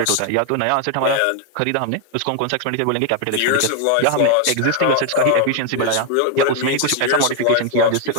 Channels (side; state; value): both; different; correlation 0.00